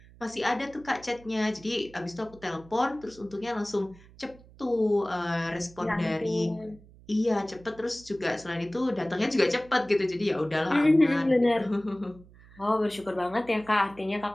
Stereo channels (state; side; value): noise; right; hum, 23 dB below the sound